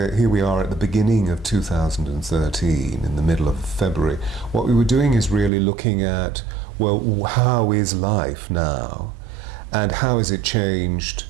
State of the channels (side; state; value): left; drops out; at 5.5 s